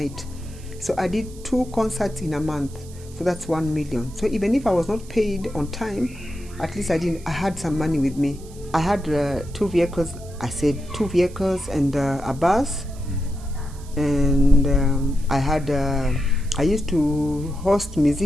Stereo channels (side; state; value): right; noise; hiss, 22 dB below the sound